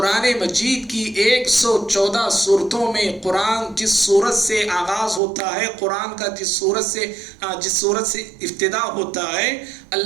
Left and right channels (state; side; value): drops out; left; at 5.2 s